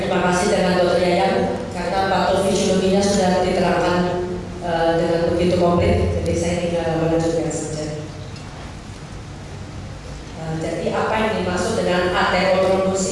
kasih dengan Dr. Yayang karena patofisiologinya sudah diterangkan dengan begitu komplit, jadi saya tinggal melanjutkan saja. Jadi apa yang dimaksud dengan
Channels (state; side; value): identical; both; correlation 1.00